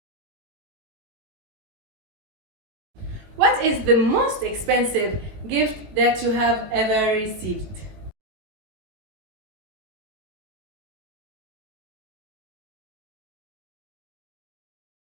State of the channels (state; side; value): late; left; 19 ms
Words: What is the most expensive gift that you have ever received?